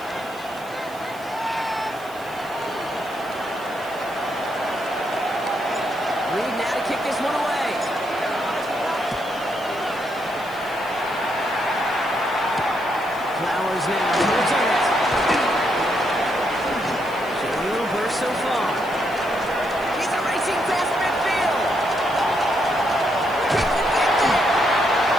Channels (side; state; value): right; noise; hiss, 22 dB below the sound